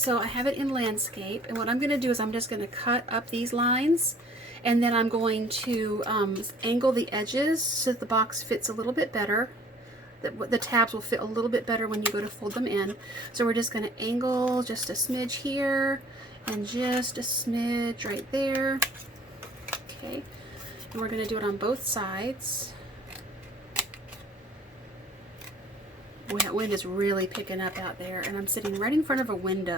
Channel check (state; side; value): normal; both; correlation 0.53